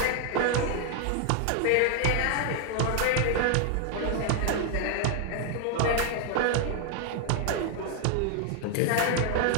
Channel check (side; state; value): both; different; correlation 0.00